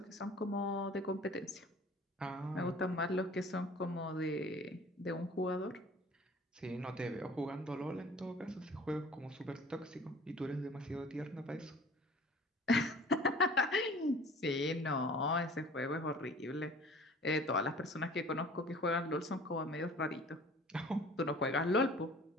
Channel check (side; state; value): both; normal; correlation 0.47